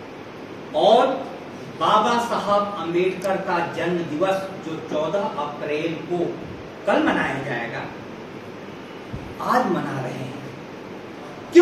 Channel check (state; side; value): identical; both; correlation 1.00